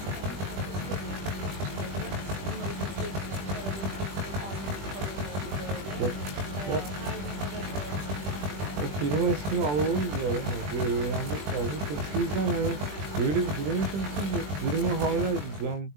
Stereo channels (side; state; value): left; late; 20 ms